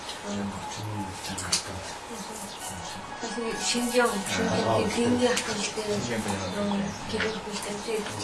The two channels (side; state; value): both; identical; correlation 1.00